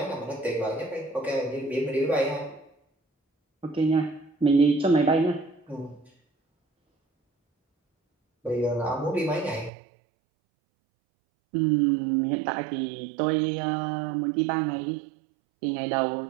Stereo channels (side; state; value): left; drops out; at 9.7 s